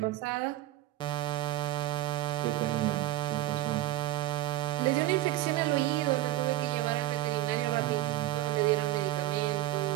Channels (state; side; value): quieter; left; 15.4 dB